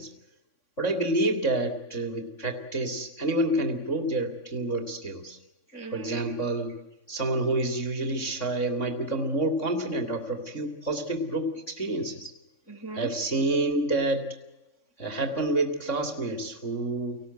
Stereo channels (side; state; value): right; late; 3.6 ms